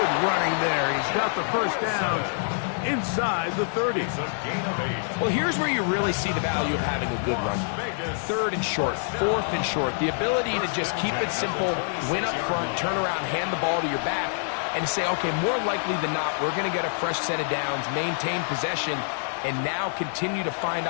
running there. He's got the first down inside the 30. Well, here's where you really see the value of having a good run. 3rd and short, 4th and short. The ability to just keep it simple, win up front, turn around, hand the ball to your back, and say, okay, more likely than not, we're going to get a fresh set of downs, maintain possession, and now continue to find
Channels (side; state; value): right; silent; digital silence